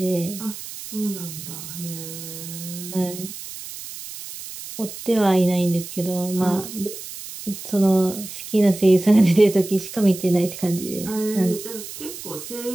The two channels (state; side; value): noise; right; hiss, 11 dB below the sound